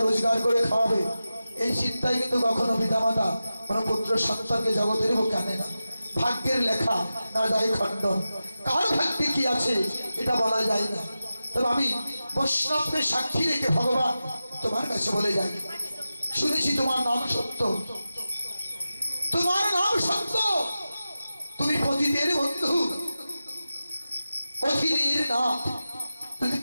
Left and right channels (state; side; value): inverted; both; correlation -0.93